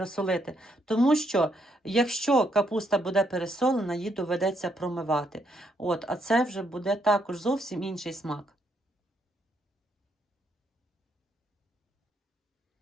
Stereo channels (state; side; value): normal; both; correlation 0.75